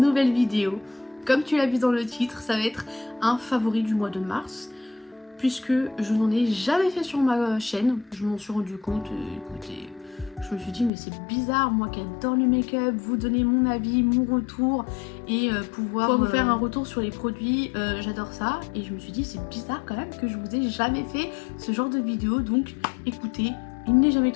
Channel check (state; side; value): drops out; right; at 10.9 s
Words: vidéo. Comme tu l'as vu dans le titre, ça va être un favori du mois de mars, puisque je n'en ai jamais fait sur ma chaîne. Je m'en suis rendu compte, écoutez, je me suis dit mais c'est bizarre, moi qui adore le make-up, vous donner mon avis, mon retour et pouvoir vous faire un retour sur les produits, j'adore ça. Et je me suis dit c'est bizarre quand même que je vous ai jamais fait ce genre de vidéo, donc écoutez, il n'est jamais